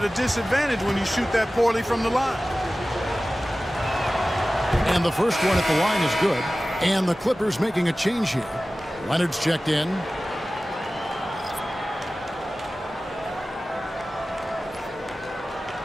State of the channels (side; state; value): both; normal; correlation 0.96